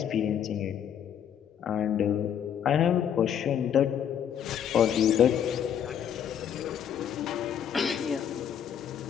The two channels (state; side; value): quieter; right; 8.9 dB